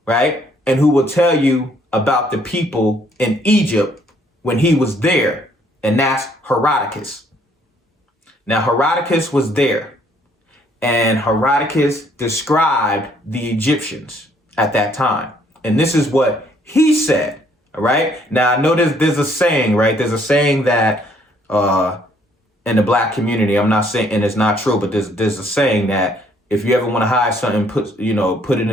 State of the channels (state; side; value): normal; both; correlation 0.65